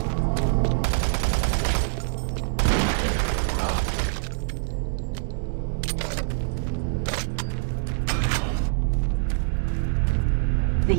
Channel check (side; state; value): left; silent; digital silence